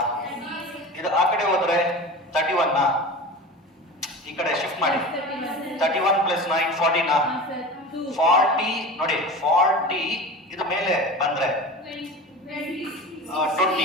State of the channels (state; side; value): normal; both; correlation 0.32